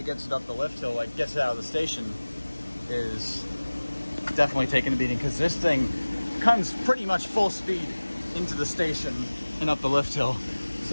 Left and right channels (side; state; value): both; inverted; correlation -1.00